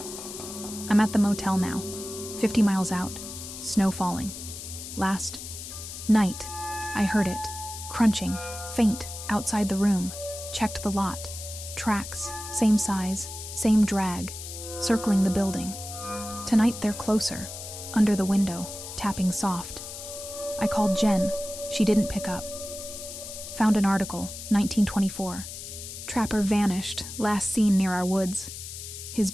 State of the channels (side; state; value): left; noise; hiss, 10 dB below the sound